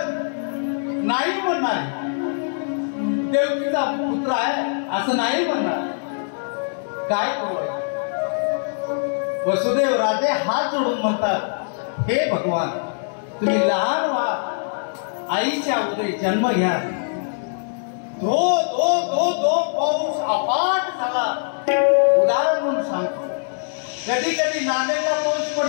नाही म्हणणार देवकीचा पुत्र आहे असं नाही म्हणणार. काय करू? वसुदेव राजे हात जोडून म्हणतात, हे भगवान, तुम्ही लहान व्हा, आईच्या उदरी जन्म घ्या. धो धो धो धो पाऊस अफाट झाला. उदाहरण म्हणून सांगतो, कधी कधी नांदेडला पाऊस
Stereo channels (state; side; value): silent; right; digital silence